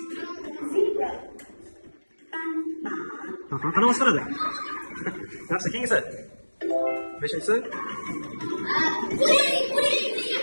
Aha, qanaqa ovoz chiqaradi? Yaxshi, keyingisi. Beshinchisi.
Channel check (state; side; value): inverted; both; correlation -1.00